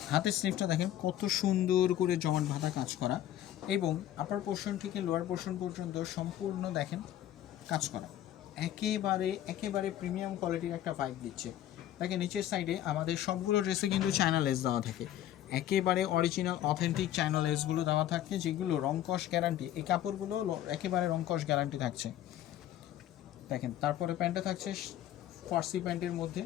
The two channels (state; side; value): quieter; right; 12.3 dB